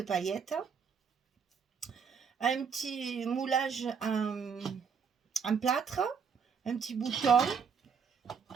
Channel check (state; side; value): quieter; left; 6.4 dB